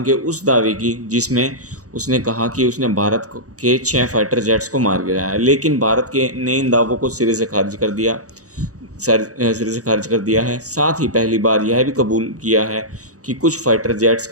के उस दावे की जिसमें उसने कहा कि उसने भारत के 6 फाइटर जेट्स को मार गिराया है। लेकिन भारत के ने इन दावों को सिरे से खारिज कर दिया है। साथ ही पहली बार यह भी कबूल किया है कि कुछ फाइटर जेट्स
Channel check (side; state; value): left; late; 0.66 ms